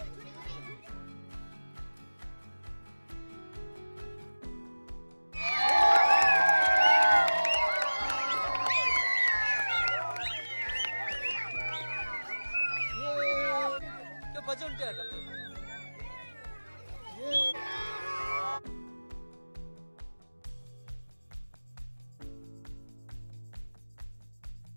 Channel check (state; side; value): inverted; both; correlation -1.00